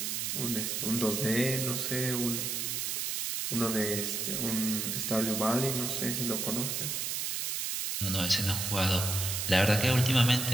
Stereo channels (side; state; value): right; noise; hiss, 1 dB below the sound